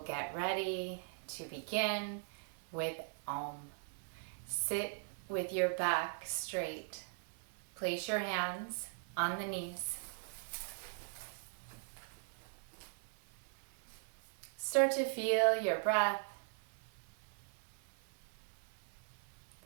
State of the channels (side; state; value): left; silent; 51 dB below the other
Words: get ready to begin with Om. Sit with your back straight. Place your hands on the knees. Start to feel your breath.